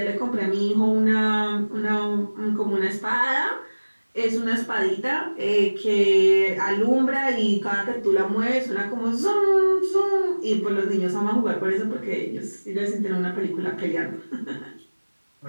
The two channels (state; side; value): inverted; both; correlation -1.00